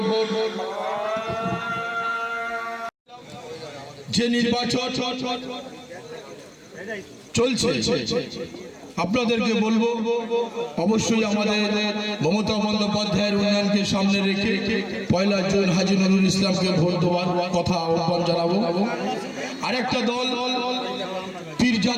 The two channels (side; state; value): both; identical; correlation 1.00